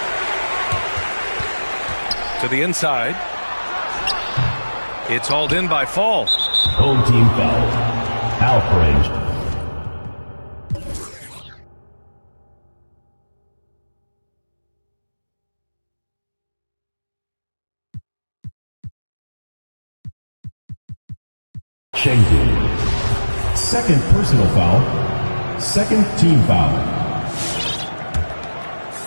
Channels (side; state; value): both; inverted; correlation -1.00